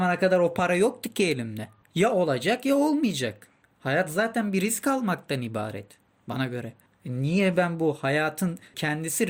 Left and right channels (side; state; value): both; identical; correlation 1.00